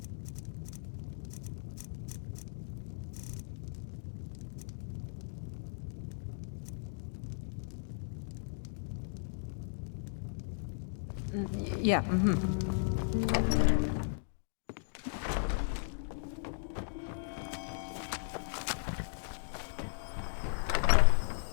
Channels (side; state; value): right; silent; digital silence